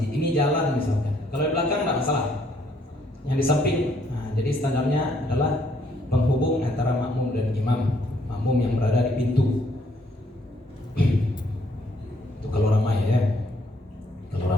ini jalan misalkan. Kalau di belakang tidak masalah. Yang di samping, nah, jadi standarnya adalah penghubung antara makmum dan imam. Makmum yang berada di pintu. Itu kalau ramai ya.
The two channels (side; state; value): both; normal; correlation 0.68